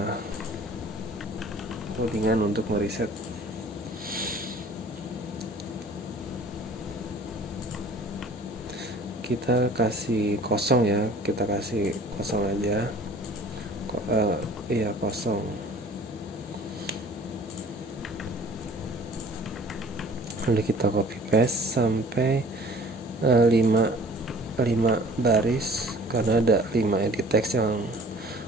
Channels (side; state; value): both; normal; correlation 0.50